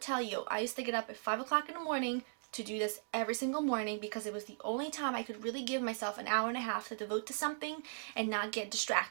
you, I used to get up at 5 o'clock in the morning to do this every single morning because it was the only time I could really give myself an hour and a half to devote to something and not get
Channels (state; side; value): silent; left; digital silence